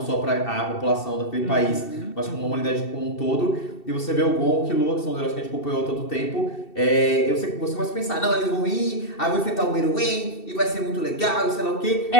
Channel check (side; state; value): right; late; 2.7 ms